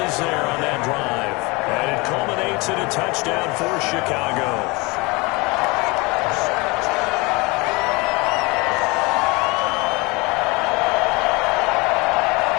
there on that drive. And it culminates in a touchdown for Chicago.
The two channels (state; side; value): quieter; right; 25.8 dB